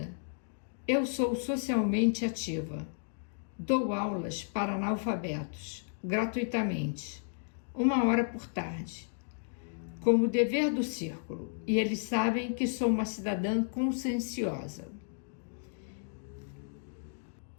Eu sou socialmente ativa. Dou aulas para analfabetos, gratuitamente, 1 hora por tarde, como dever do círculo, e eles sabem que sou uma cidadã conscienciosa.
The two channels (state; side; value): silent; right; digital silence